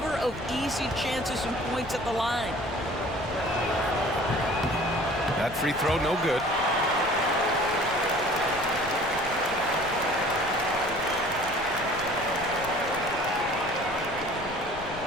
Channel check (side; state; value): left; noise; rumble, 15 dB below the sound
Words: of easy chances and points at the line. That free throw, no good.